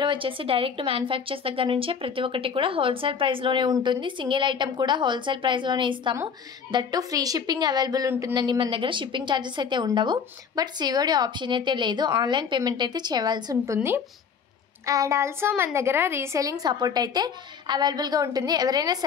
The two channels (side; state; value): right; quieter; 6.5 dB